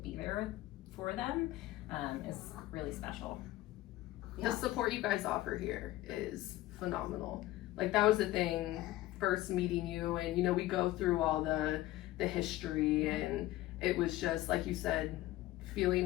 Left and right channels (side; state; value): right; quieter; 16.2 dB